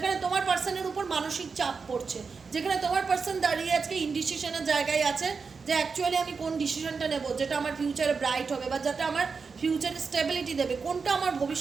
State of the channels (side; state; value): left; quieter; 5.1 dB